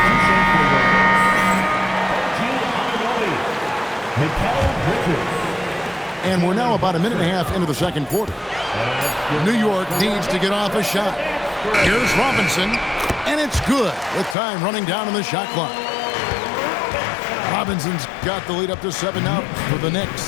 And we're now about a minute and a half into the second quarter. New York needs to get off a shot. Here's Robinson, and it's good with time running down on the shot clock. Robinson's got the lead up to 7 now for the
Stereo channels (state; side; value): drops out; right; at 14.4 s